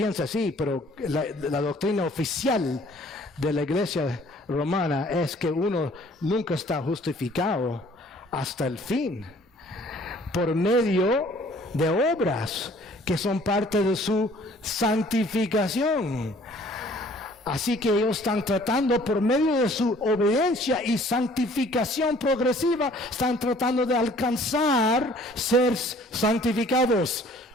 así, pero la doctrina oficial de la iglesia romana es que uno nunca está justificado hasta el fin por medio de obras que son parte de su santificación. Así que ellos están tratando por medio de su obediencia y santificación progresiva, están tratando de alcanzar ser santificados,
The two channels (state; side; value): normal; both; correlation 0.56